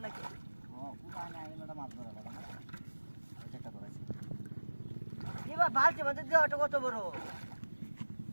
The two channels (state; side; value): inverted; both; correlation -1.00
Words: নাকি ও পুরা না এলোটা মাছ ধরা লাগা না ওই একটা ধরেছি এবার বালতি মধ্যে দেওয়াটা কত বড়